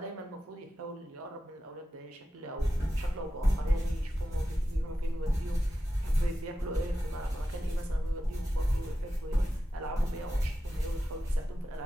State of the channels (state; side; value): normal; both; correlation 0.92